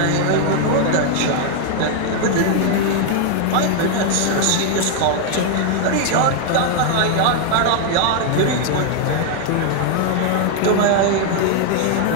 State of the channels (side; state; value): both; different; correlation 0.00